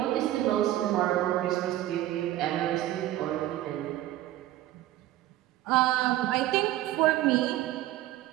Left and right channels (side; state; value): left; quieter; 14.7 dB